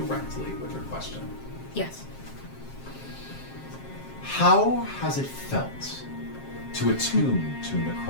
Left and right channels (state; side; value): late; right; 7.5 ms